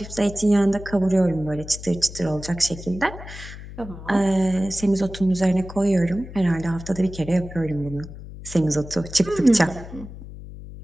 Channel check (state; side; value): noise; left; hum, 13 dB below the sound